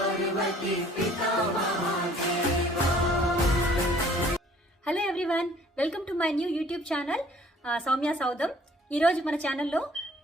पिता Mahadeva. Hello everyone, welcome to my new YouTube channel Soumya Soudam. ఈరోజు మన ఛానల్లో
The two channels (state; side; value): normal; both; correlation 0.56